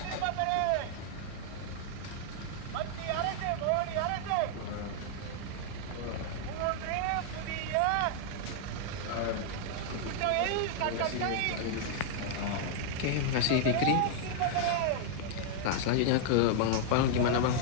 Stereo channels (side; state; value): both; different; correlation -0.01